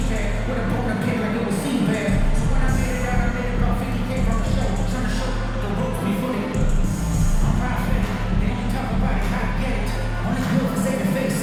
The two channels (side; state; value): both; identical; correlation 1.00